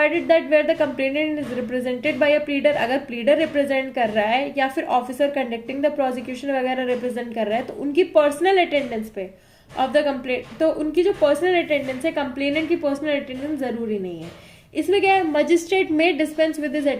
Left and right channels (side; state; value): both; identical; correlation 1.00